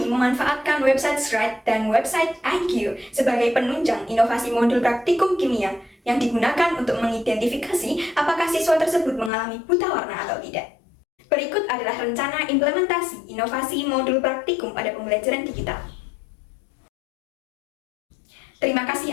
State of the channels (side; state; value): right; drops out; at 9.3 s